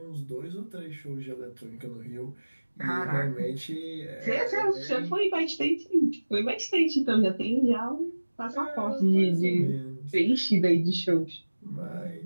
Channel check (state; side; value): inverted; both; correlation -1.00